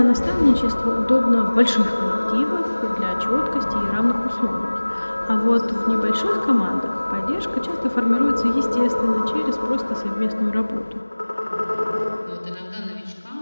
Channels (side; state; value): both; inverted; correlation -1.00